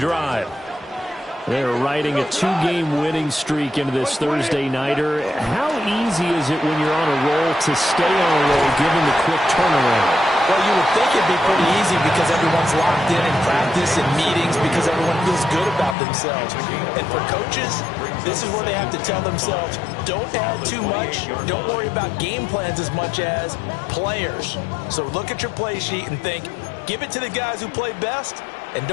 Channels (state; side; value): drops out; right; at 16.0 s